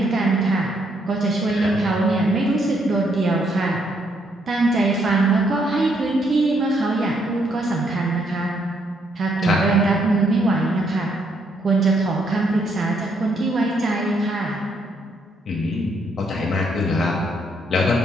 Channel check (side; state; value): both; normal; correlation 0.73